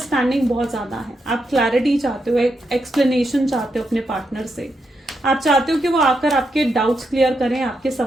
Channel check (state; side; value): normal; both; correlation 0.83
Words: बहुत ज़्यादा है। आप क्लैरिटी चाहते हो, एक एक्सप्लेनेशन चाहते हो अपने पार्टनर से। आप चाहते हो कि वो आकर आपके डाउट्स क्लियर करें, आपके